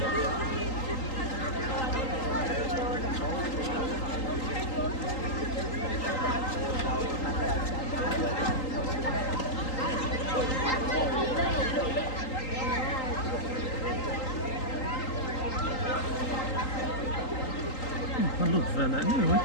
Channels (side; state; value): right; late; 3.8 ms